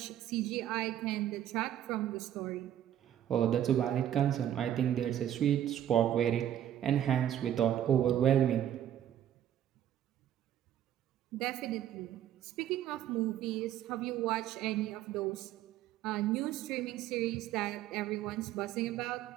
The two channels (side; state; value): left; quieter; 11.0 dB